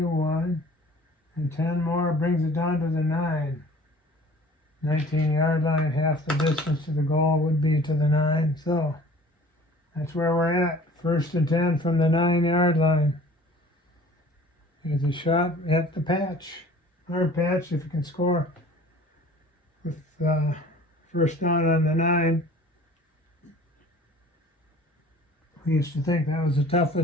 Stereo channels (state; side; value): normal; both; correlation 0.48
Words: and 10 more brings it down to the 9. 19-yard line, half the distance to the goal would be to the 9. So that's where we're at. 1st and 10 from the 9-yard line. Here's a shot at the patch. Hard patch if you can score with first down on the 9. We used to think that was the